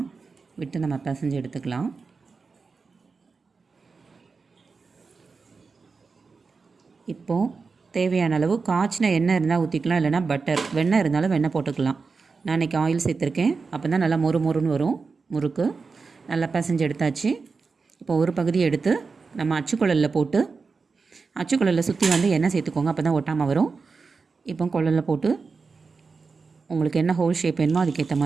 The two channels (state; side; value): quieter; left; 4.6 dB